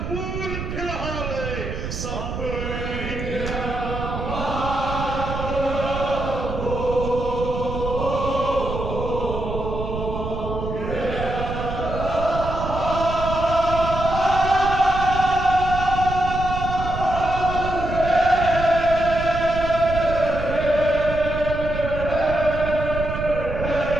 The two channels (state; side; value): noise; right; rumble, 6 dB below the sound